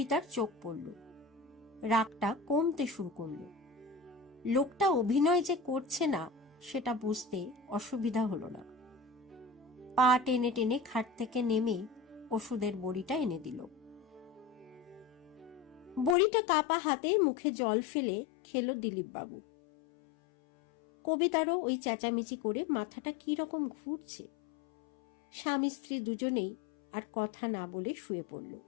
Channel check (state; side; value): drops out; right; at 16.2 s